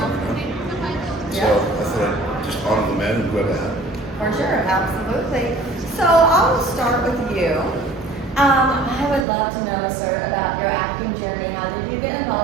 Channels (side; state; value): left; drops out; at 9.2 s